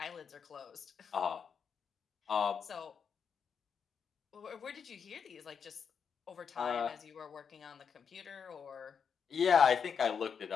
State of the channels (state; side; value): quieter; right; 6.7 dB